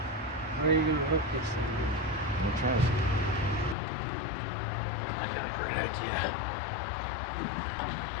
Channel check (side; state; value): right; drops out; at 3.8 s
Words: Where are you going to hook this thing? I'm gonna try it. I got a great idea.